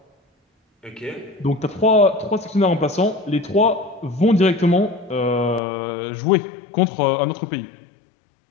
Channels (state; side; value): drops out; right; at 5.6 s